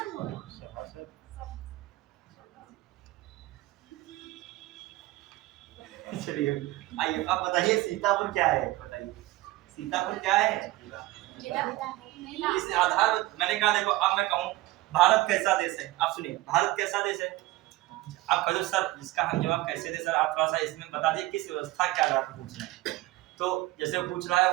चलिए आइए अब बताइए सीतापुर क्या है, बताइए सीतापुर क्या है। इस आधार मैंने कहा, देखो अब मैं कहूँ भारत कैसा देश है, आप सुनिए भारत कैसा देश है। आप कहो सर इसका हम जवाब कैसे दे, सर आप थोड़ा सा इसमें बता दिए किस व्यवस्था के आधार पर पूछ रहे हैं। तो जैसे वो पूछ रहा है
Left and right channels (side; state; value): left; quieter; 18.3 dB